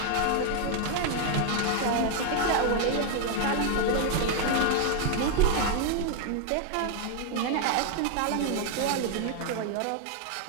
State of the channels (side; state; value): both; different; correlation 0.00